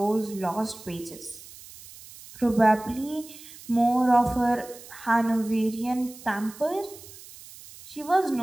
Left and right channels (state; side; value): noise; right; hiss, 18 dB below the sound